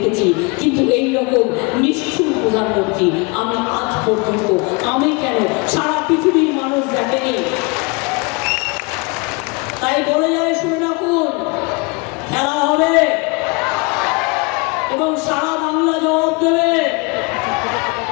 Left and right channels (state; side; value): quieter; right; 29.4 dB